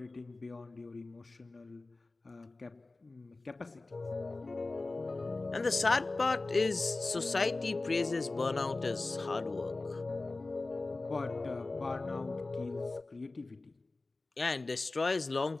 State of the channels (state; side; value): quieter; right; 3.3 dB